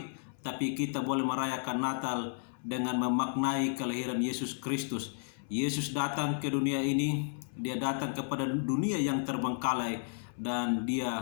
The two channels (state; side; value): silent; right; 56 dB below the other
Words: tapi kita boleh merayakan Natal dengan memaknai kelahiran Yesus Kristus. Yesus datang ke dunia ini, Dia datang kepada dunia yang terbengkalai, dan